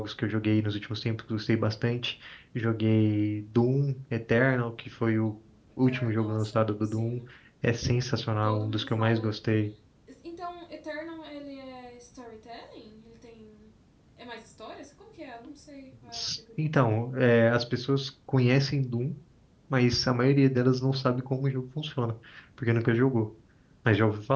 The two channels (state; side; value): identical; both; correlation 1.00